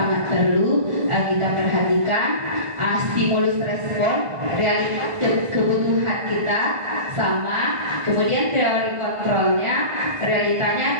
perlu kita perhatikan. Stimulus respon, realitas kebutuhan kita sama, kemudian teori kontrolnya,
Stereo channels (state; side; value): late; left; 1.5 ms